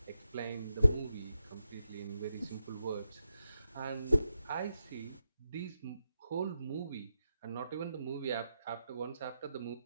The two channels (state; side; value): inverted; both; correlation -0.86